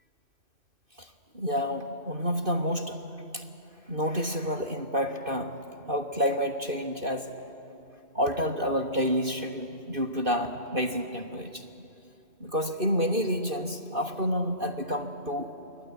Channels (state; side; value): late; left; 2.5 ms